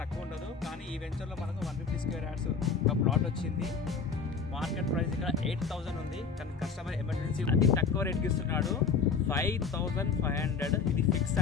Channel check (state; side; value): quieter; right; 5.5 dB